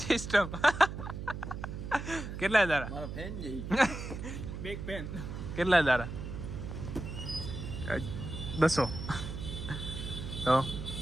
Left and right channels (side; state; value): right; noise; hum, 7 dB below the sound